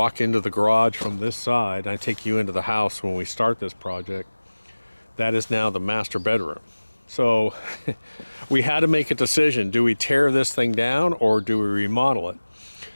into the garage from this side. I take you into the house when we start this project. That is now the master bedroom. So we had to make a decision. Do we tear this thing down or do we remodel it?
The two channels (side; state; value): both; inverted; correlation -1.00